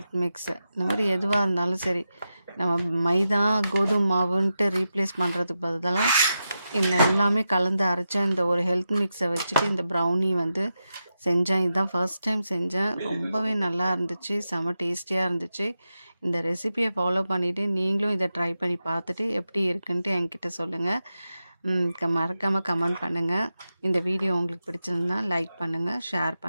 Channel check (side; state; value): both; inverted; correlation -0.90